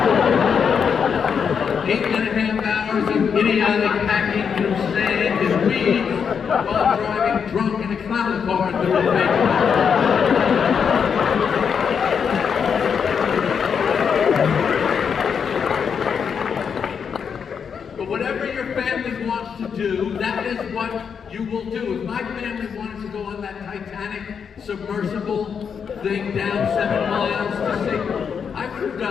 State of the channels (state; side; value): quieter; right; 6.8 dB